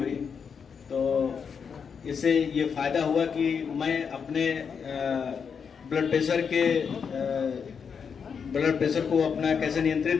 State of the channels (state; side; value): quieter; right; 6.5 dB